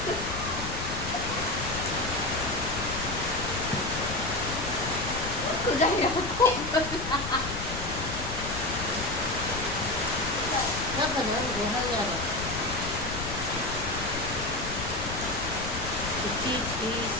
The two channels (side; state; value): left; noise; rumble, 7 dB below the sound